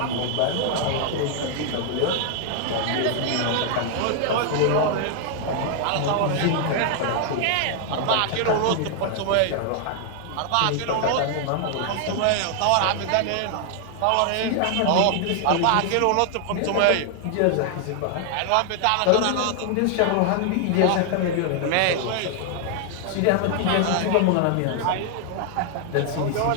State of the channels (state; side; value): different; both; correlation 0.00